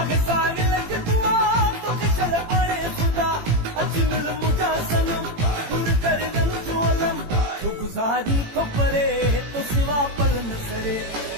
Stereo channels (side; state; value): left; late; 18 ms